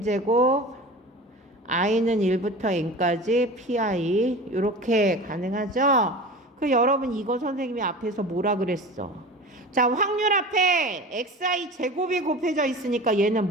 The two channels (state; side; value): normal; both; correlation 0.34